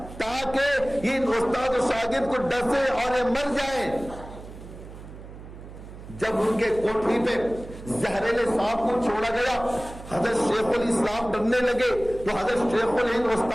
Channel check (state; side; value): noise; right; hum, 15 dB below the sound